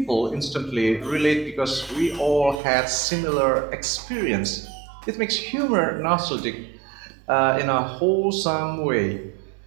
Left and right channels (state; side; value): drops out; left; at 2.6 s